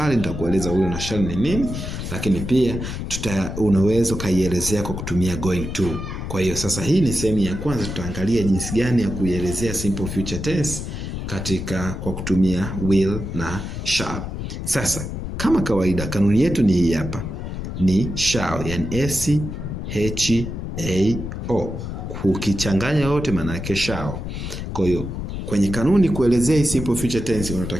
nitakueleza will na shall ni nini, lakini pia unaweza kaielezea kwa kutumia going to. Kwa hiyo sasa hii ni sehemu ya kwanza, tutaangalia jinsi gani ya kuielezea simple future tense kwa kutumia will na shall. Sasa kama kawaida kanuni yetu ni hii hapa. Ni shall, yani SHAO. Ukichanganya yote maana yake shall. Kwa hiyo kwenye kanuni kuelezea simple future tense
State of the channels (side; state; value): left; noise; rumble, 6 dB below the sound